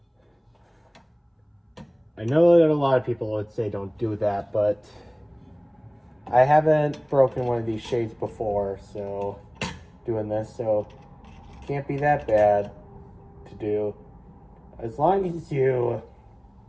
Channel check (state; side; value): identical; both; correlation 1.00